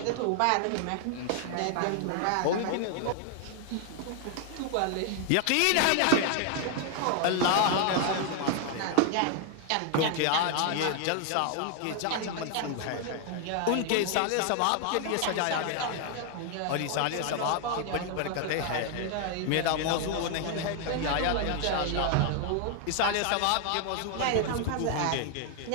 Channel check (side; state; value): both; different; correlation 0.00